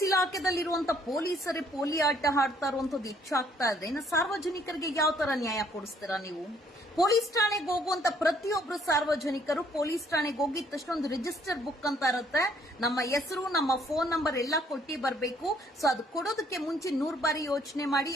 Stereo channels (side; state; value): both; normal; correlation 0.64